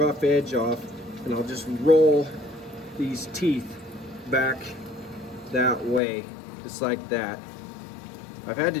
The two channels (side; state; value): right; drops out; at 6.0 s